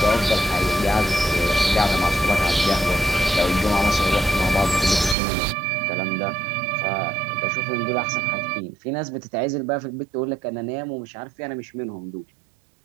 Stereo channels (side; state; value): left; drops out; at 5.2 s